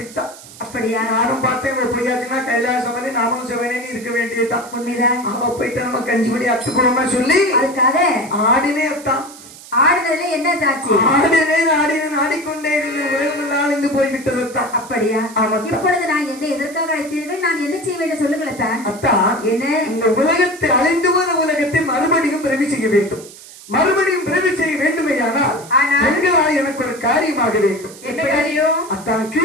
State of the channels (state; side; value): noise; right; hiss, 18 dB below the sound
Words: அப்படியா? நானும் பார்த்தேன், எப்படியாச்சுன்னா கைலாசமலை நாமளும் சிவனேன்னு இருக்க வேண்டியதுதான். உண்மைதான். அவ போயிட்டு நம்ம கஞ்சிபடி அத்துக்குறோமா சொல்லி அதுக்காக ஆடினே அத்தான். ஆடினதுல என்ன சாட்சி? ஆடினேன் ஆடிக்கொண்டே இருந்த உலகம் நாளிந்து போய்விட்டது தான். அப்படியா? இப்பொழுது நான் என்ன எதற்காக அழைத்தீர்கள்? நான் என்ன செய்ய வேண்டும் சொல்லுங்களேன் தான். அத்தான் என்ன, இந்த உலகத்தை அழிந்து போன உலகத்தை மறுபடியும் பிறவி செய்ய வேண்டும். மறுபடியும் பிறவி செய்ய வேண்டுமையானால் எங்களால் எனக்கு ஒரு காரியமாக வேண்டும். அத்தான்